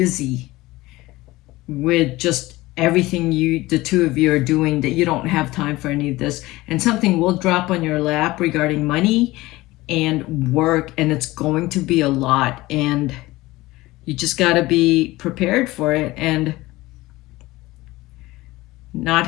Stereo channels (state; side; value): quieter; right; 19.2 dB